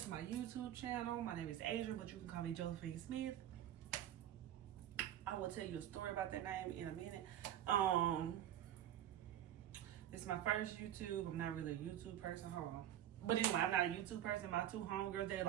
my YouTube channel. My name is Adrian, but you can call me Josephine Smith. I will tell you a story about that name in a minute. This is my first YouTube. I'm not really a YouTube person, but anyway, I'm not a YouTube person. My two homegirls, they're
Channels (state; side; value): quieter; left; 11.5 dB